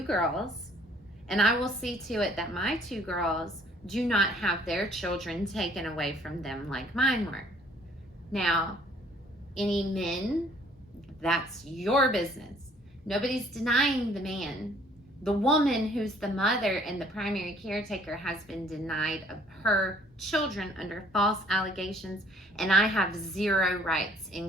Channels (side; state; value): both; normal; correlation 0.59